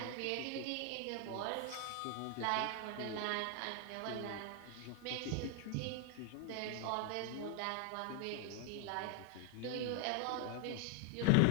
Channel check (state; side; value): different; both; correlation 0.00